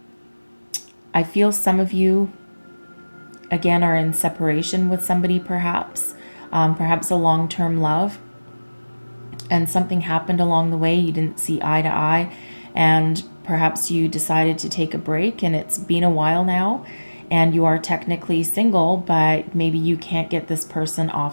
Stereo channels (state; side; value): inverted; both; correlation -1.00